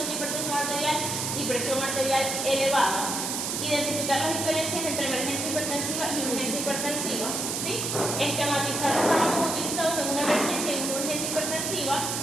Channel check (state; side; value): noise; right; hiss, 2 dB below the sound